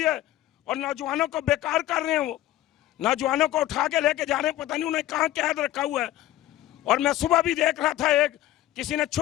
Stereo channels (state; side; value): quieter; right; 14.4 dB